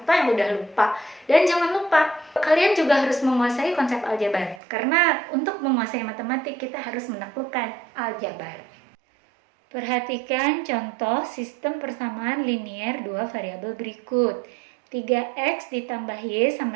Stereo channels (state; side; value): drops out; left; at 4.6 s